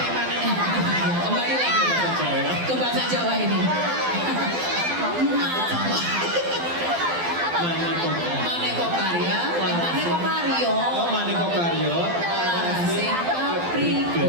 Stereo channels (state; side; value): late; left; 12 ms